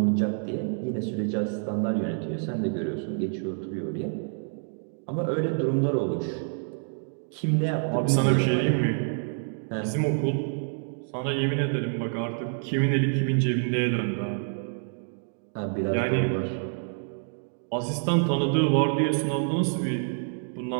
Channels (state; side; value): silent; left; 59 dB below the other